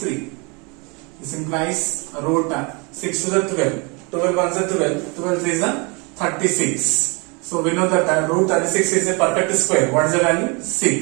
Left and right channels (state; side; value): quieter; left; 30.8 dB